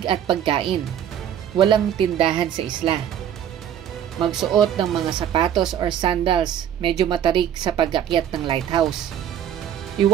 at pagkain. Walang tindahan sa isla. Magsuot ng mga sapatos or sandals, medyo matarik sa pag-akyat ng lighthouse.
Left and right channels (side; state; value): left; quieter; 9.9 dB